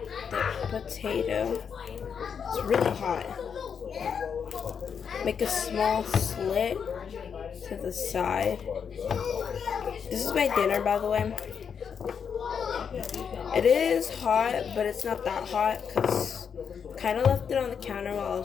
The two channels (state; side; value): quieter; right; 7.0 dB